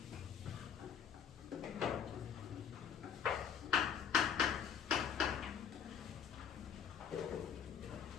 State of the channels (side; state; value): right; quieter; 7.9 dB